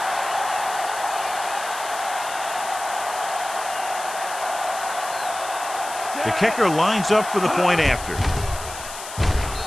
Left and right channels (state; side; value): noise; left; hiss, 11 dB below the sound